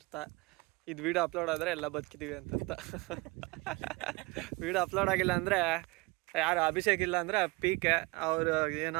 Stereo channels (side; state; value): left; quieter; 25.1 dB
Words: ಇದು ವಿಡಿಯೋ ಅಪ್ಲೋಡ್ ಆದರೆ ಎಲ್ಲ ಬದುಕಿದ್ದೀವಿ ಅಂತ ಅರ್ಥ. ವಿಡಿಯೋ ಅಪ್ಲೋಡ್ ಆಗಿಲ್ಲ ಅಂದರೆ ಯಾರು ಅಭಿಷೇಕ್ ಇಲ್ಲ ಅಂದರೆ PK